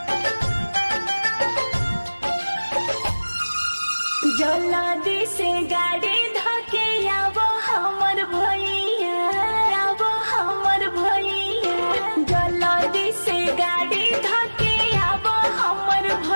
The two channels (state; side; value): inverted; both; correlation -1.00